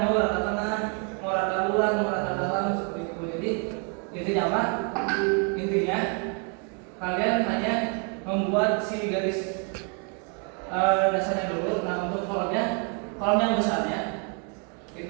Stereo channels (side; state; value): left; quieter; 39.0 dB